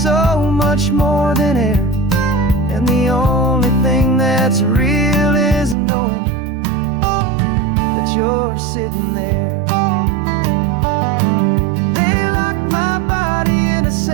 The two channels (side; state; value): left; drops out; at 5.8 s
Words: so much more than air, and the only thing that's real is knowing that you're sitting there. They locked my body in a